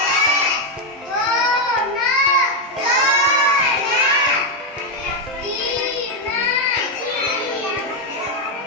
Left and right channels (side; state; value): both; normal; correlation 0.03